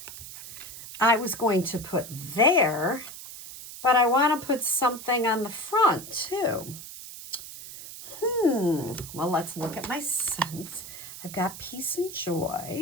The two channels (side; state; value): right; noise; hiss, 13 dB below the sound